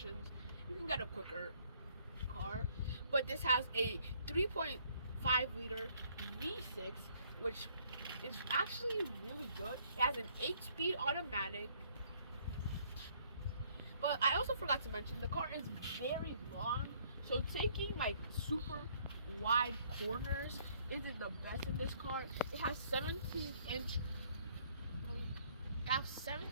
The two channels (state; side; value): inverted; both; correlation -0.63